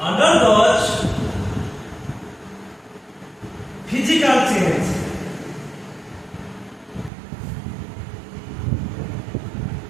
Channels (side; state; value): left; drops out; at 7.1 s